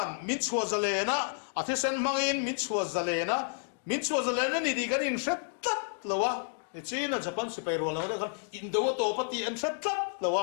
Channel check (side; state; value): right; silent; 57 dB below the other